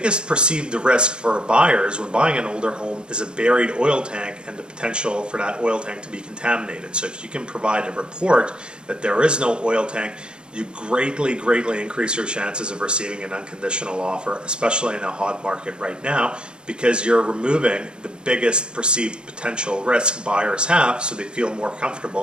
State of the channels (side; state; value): left; late; 0.051 ms